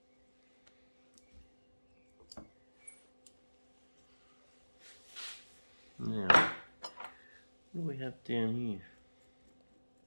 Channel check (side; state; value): both; inverted; correlation -1.00